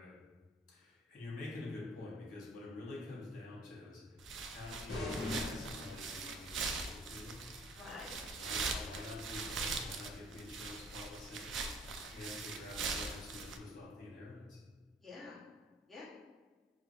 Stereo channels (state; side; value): normal; both; correlation 0.54